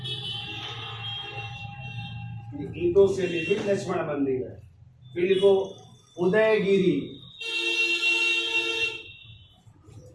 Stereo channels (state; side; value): identical; both; correlation 1.00